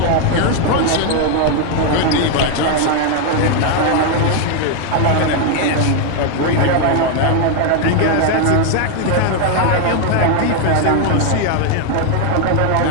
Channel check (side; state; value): both; different; correlation 0.01